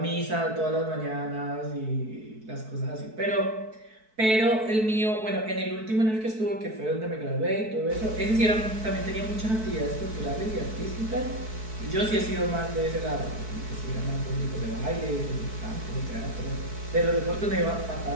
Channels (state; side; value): late; left; 4.6 ms